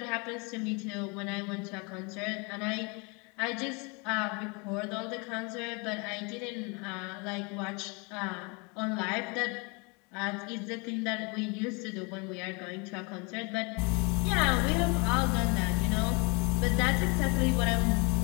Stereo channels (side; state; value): right; quieter; 31.0 dB